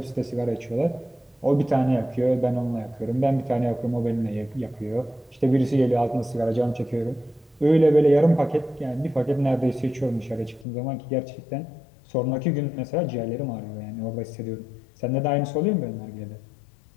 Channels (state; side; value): drops out; right; at 10.7 s